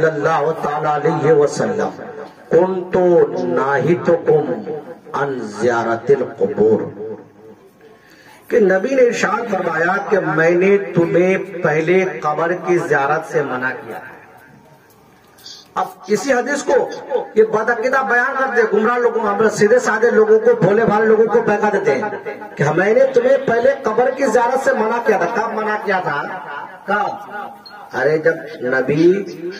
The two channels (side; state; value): both; identical; correlation 1.00